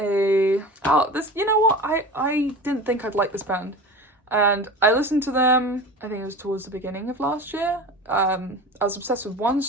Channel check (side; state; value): both; normal; correlation 0.33